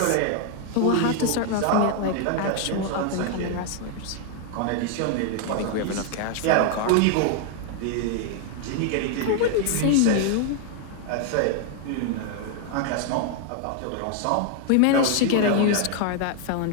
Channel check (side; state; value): both; different; correlation 0.00